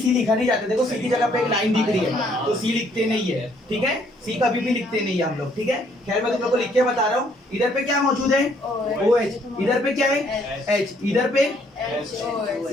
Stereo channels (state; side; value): normal; both; correlation 0.66